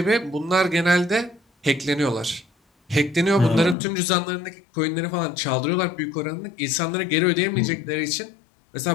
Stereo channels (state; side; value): drops out; right; at 3.8 s